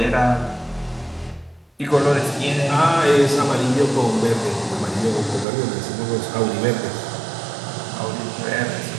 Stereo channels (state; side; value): drops out; left; at 5.5 s